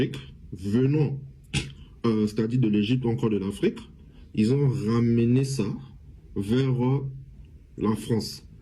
venant, c'est-à-dire de l'Égypte ou encore de l'Afrique, ils ont ramené ça vers la France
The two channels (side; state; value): both; identical; correlation 1.00